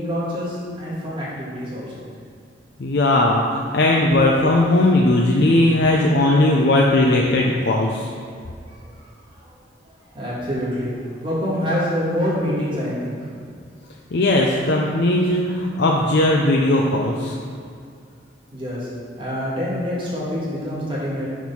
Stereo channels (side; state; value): both; normal; correlation 0.46